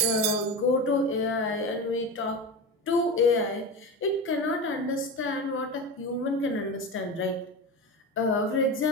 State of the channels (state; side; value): normal; both; correlation 0.24